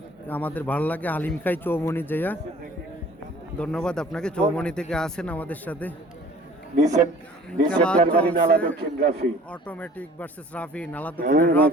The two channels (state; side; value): normal; both; correlation 0.50